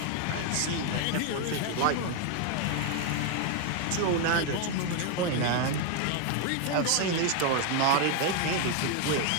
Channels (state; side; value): different; both; correlation 0.01